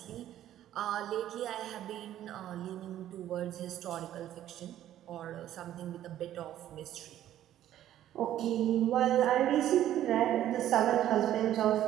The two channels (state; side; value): quieter; left; 12.2 dB